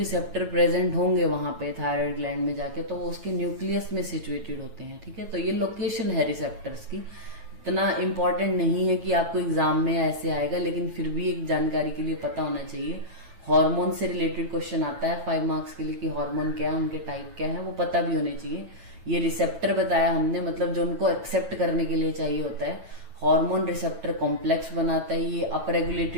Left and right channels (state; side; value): late; left; 9.2 ms